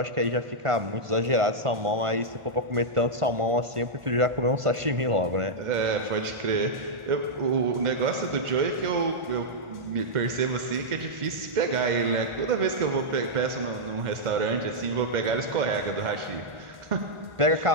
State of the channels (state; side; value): late; left; 1.4 ms